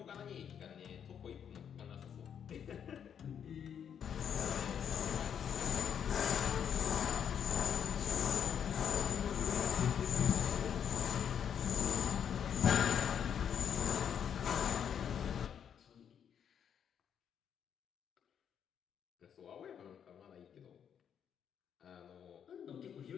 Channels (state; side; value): quieter; right; 8.3 dB